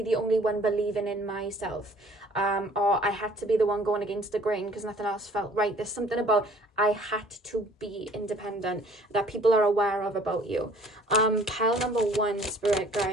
the only one believing in myself. Or I had to be the one going against the grain because nothing else felt right. There's something about I had to be independent that people are aware of about you. Pile number 1, Spirit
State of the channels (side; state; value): both; normal; correlation 0.55